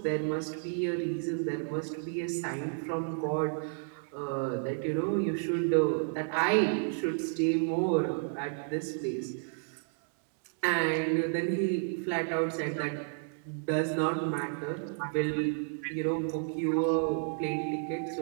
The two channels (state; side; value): silent; left; digital silence